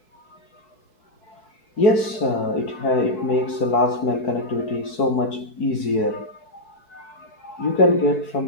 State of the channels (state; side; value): late; right; 4.6 ms